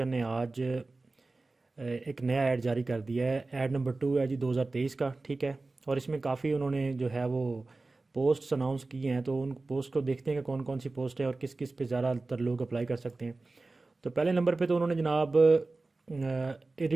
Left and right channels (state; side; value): quieter; left; 3.4 dB